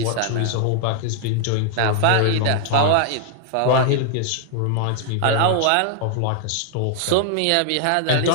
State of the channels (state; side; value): different; both; correlation 0.00